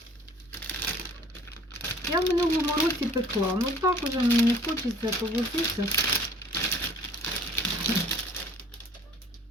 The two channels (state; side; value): normal; both; correlation 0.52